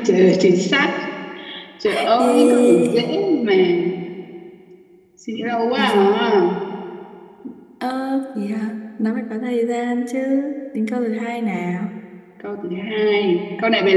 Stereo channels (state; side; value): identical; both; correlation 1.00